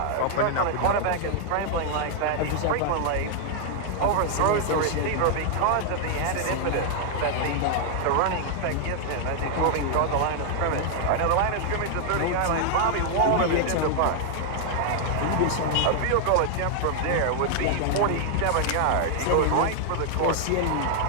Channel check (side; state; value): both; different; correlation 0.00